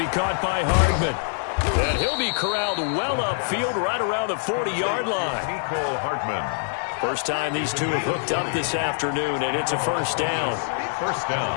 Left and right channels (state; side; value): silent; right; digital silence